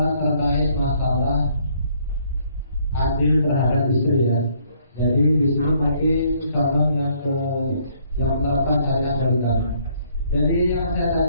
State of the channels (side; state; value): both; inverted; correlation -0.66